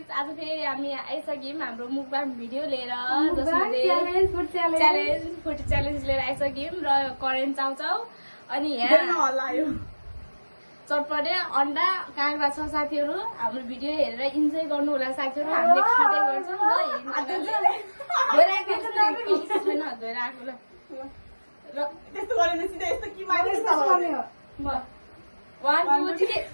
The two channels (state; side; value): inverted; both; correlation -1.00